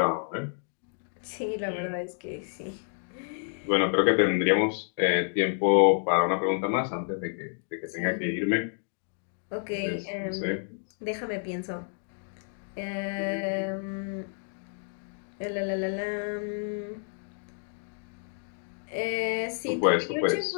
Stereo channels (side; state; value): right; silent; digital silence